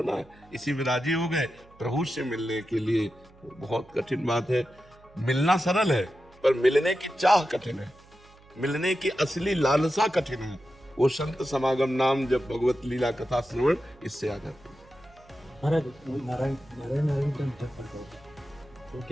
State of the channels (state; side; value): noise; right; hum, 26 dB below the sound